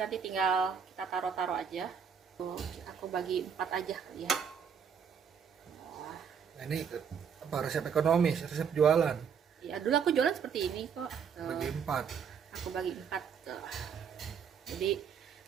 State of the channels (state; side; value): quieter; left; 7.1 dB